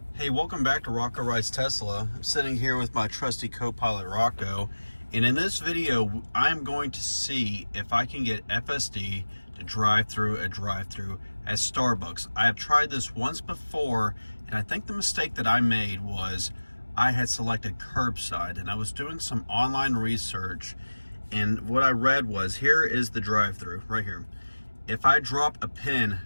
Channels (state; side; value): inverted; both; correlation -1.00